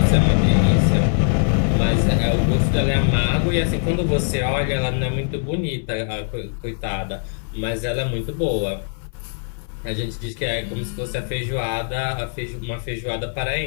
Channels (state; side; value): silent; right; 65 dB below the other